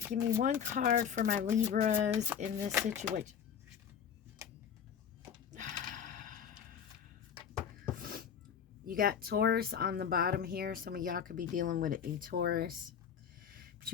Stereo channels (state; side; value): quieter; right; 7.9 dB